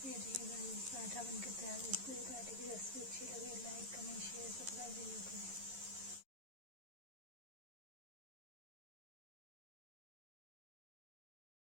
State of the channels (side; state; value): left; late; 11 ms